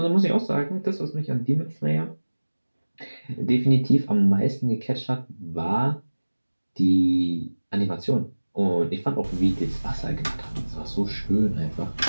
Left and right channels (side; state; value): both; inverted; correlation -1.00